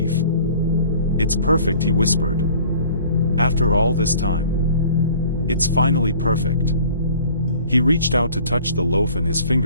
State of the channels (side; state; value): both; inverted; correlation -0.50